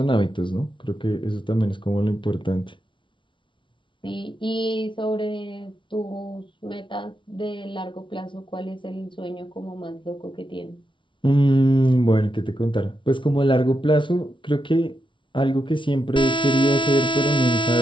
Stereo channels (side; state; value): right; late; 0.24 ms